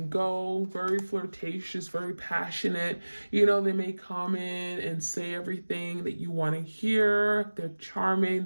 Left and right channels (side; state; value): both; inverted; correlation -1.00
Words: go, very flirtatious, very passionate. They may come in and say everything that you want to hear. They're charming,